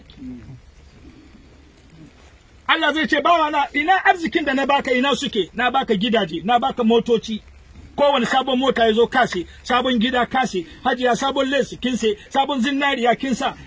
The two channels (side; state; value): both; identical; correlation 1.00